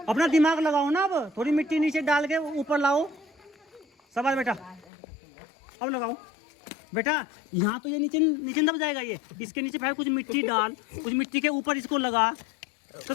अपना दिमाग लगाओ ना। अब थोड़ी मिट्टी नीचे डाल के ऊपर लाओ। शाबाश बेटा, अब लगाओ बेटा। यहाँ तो ये नीचे नीचे दब जाएगा ये, इसके नीचे फिर कुछ मिट्टी डाल, कुछ मिट्टी के ऊपर इसको लगा। तो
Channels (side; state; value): right; drops out; at 4.9 s